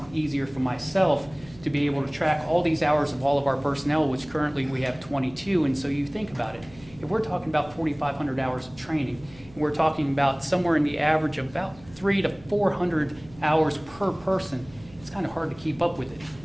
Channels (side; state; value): right; noise; hum, 22 dB below the sound